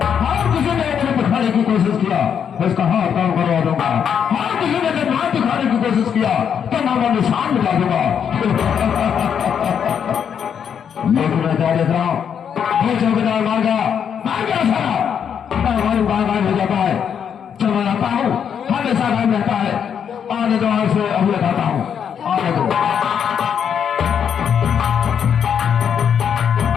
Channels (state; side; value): quieter; right; 7.9 dB